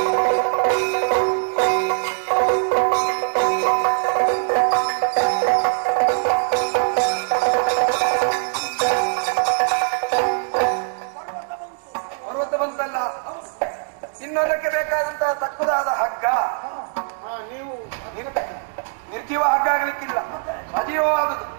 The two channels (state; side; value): silent; left; 64 dB below the other